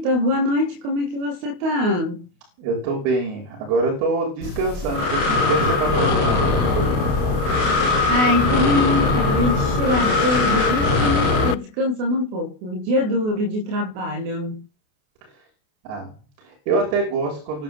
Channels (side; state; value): left; late; 28 ms